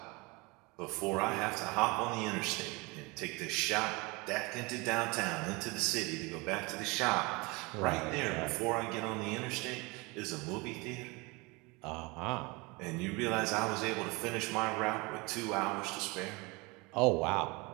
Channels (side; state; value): left; quieter; 26.1 dB